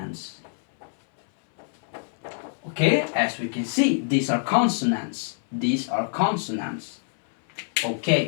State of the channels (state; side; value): silent; right; 62 dB below the other